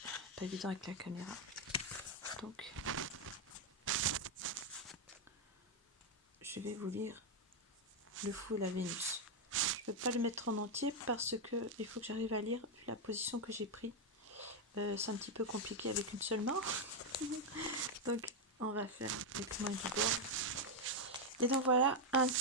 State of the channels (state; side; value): normal; both; correlation 0.02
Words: Pas évident avec la caméra. Donc, je vais vous lire Le Fou et la Vénus. Je ne peux pas le mettre en entier parce que il faut que j'arrive à lire la position que j'ai prise. C'est un petit peu compliqué avec une seule main. Donc on va faire avec main du bord. Et donc voilà un